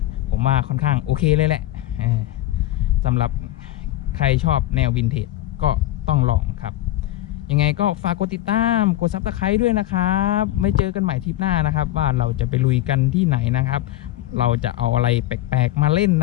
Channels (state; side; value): quieter; right; 14.8 dB